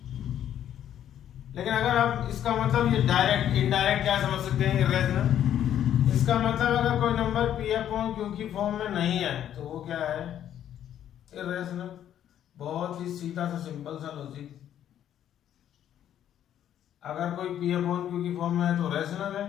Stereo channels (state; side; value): quieter; right; 10.6 dB